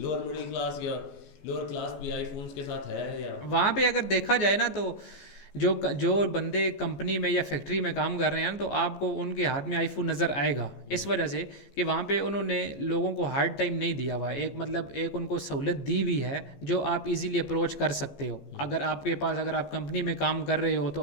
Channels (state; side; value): late; right; 14 ms